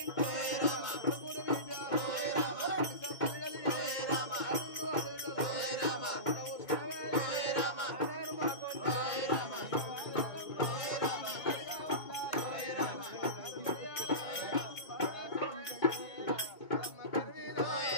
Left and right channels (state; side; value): late; right; 2.2 ms